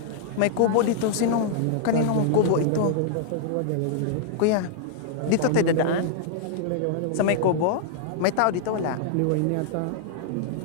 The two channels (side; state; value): both; different; correlation -0.01